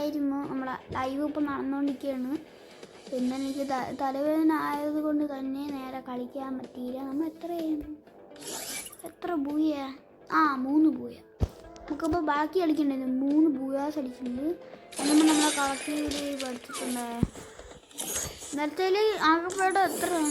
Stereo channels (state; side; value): identical; both; correlation 1.00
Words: നമ്മളെ ലൈവ് ഇപ്പോൾ നടന്നുകൊണ്ടിരിക്കുകയാണ്. പിന്നെ എനിക്ക് തലവേദന ആയതുകൊണ്ട് തന്നെ നേരെ കളിക്കാൻ പറ്റിയില്ല. നമ്മൾ എത്ര ബൂയ? 3 ബൂയ. നമുക്കിപ്പോൾ ബാക്കി കളിക്കണ്ടായിരുന്നു. 3 ബൂയാസ് അടിച്ചിട്ടുണ്ട്. എന്നും നമ്മളെ കളക്ടീവിൽ പഠിച്ചിട്ടുണ്ട്. നേരത്തെ ആകെപ്പാടെ